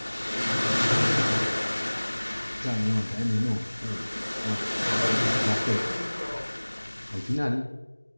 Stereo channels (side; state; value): both; inverted; correlation -1.00